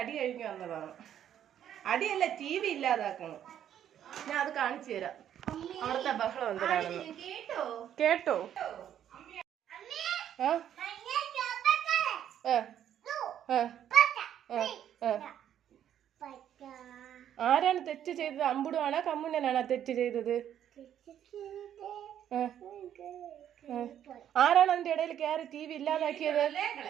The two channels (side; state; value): left; quieter; 10.2 dB